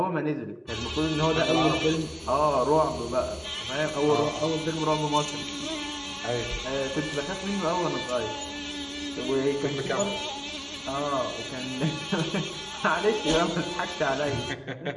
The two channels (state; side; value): identical; both; correlation 1.00